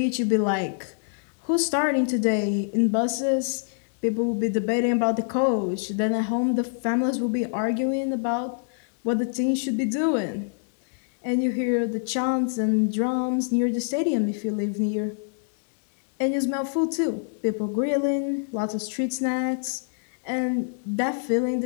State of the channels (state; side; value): silent; right; digital silence